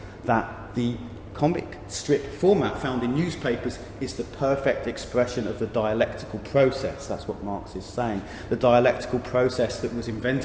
that the comic strip format found in newspapers is the perfect expression of the dialectical process. That's what Marx is saying. The dialectical process that was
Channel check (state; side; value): identical; both; correlation 1.00